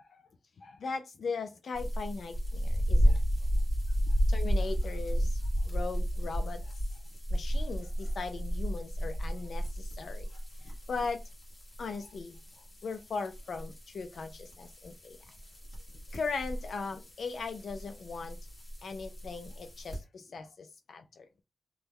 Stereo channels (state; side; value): normal; both; correlation 0.94